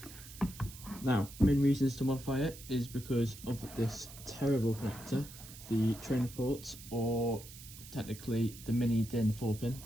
Now, main reasons to modify it is because of this terrible connector, the trainer port, or technically the mini DIN 4-pin,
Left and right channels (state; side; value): noise; right; hiss, 16 dB below the sound